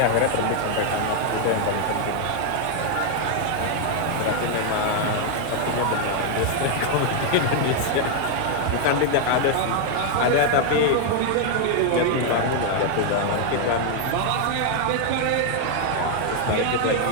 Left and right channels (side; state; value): both; different; correlation 0.00